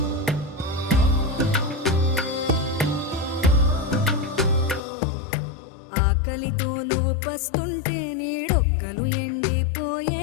ఆకలితో నువ్వు పస్తుంటే నీడొక్కలు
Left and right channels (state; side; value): drops out; right; at 4.8 s